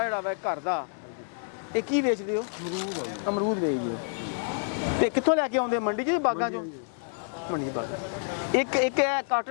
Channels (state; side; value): silent; right; digital silence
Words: जेह्ड़ा वा घर दा ਇਹ ਕੀ ਵੇਚਦੇ ਹੋ? अमरूद है जी। ਅਮਰੂਦ ਵੇਚਦੇ ਹੋ ਤੇ ਕਿੱਥੋਂ ਲੈ ਕੇ ਆਉਂਦੇ ਹੋ? ਮੰਡੀ 'ਚੋਂ ਜਾਂ ਬਾਗਾਂ 'ਚੋਂ? ਮੰਡੀ 'ਚ ਬਾਗਾਂ। ਇੱਕ